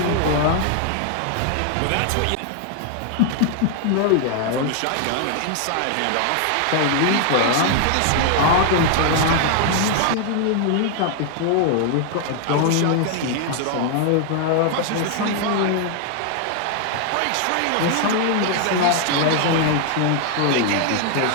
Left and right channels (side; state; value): both; different; correlation 0.00